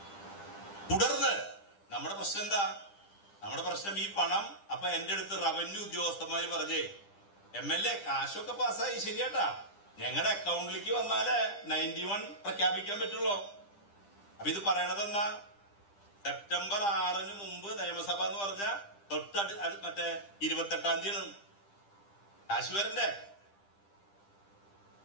തുടർന്ന് നമ്മുടെ പ്രശ്നം എന്താ? നമ്മുടെ പ്രശ്നം ഈ പണം. അപ്പൊ എന്റെ അടുത്ത് റവന്യൂ ഉദ്യോഗസ്ഥന്മാര് പറഞ്ഞേ, MLA കാശൊക്കെ പാസ്സായി ശരിയാട്ടാ, ഞങ്ങളുടെ അക്കൗണ്ടിലേക്ക് വന്നാലേ 91 പ്രഖ്യാപിക്കാൻ പറ്റുള്ളൂ. അപ്പൊ ഇത് പറയണതെന്നാ, സെപ്റ്റംബർ 6 മുമ്പ് നിയമസഭ എന്ന് പറഞ്ഞ മറ്റേ 28-ാം തീയതി കാശ് വരണ്ടേ?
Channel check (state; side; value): late; right; 10 ms